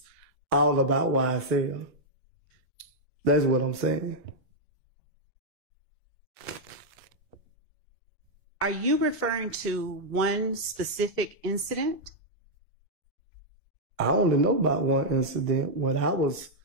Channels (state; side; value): normal; both; correlation -0.04